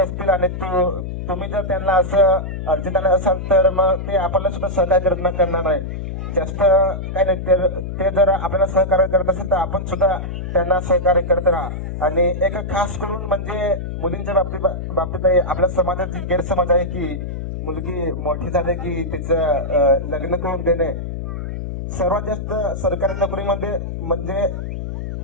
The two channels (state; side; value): noise; left; hum, 6 dB below the sound